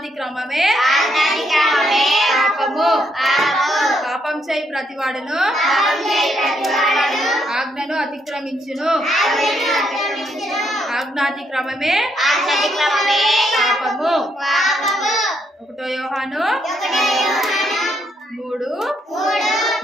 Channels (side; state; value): both; normal; correlation 0.75